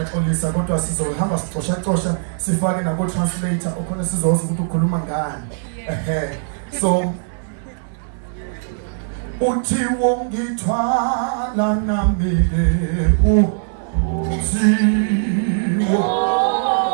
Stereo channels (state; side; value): silent; left; digital silence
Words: kodwa sizohamba sixosha sifake nabo translator okhona sizoza ukuthi ukhuluma ngani so uthi wongithwala nami